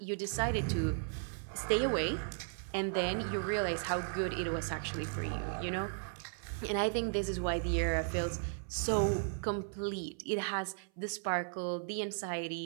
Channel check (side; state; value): left; silent; 54 dB below the other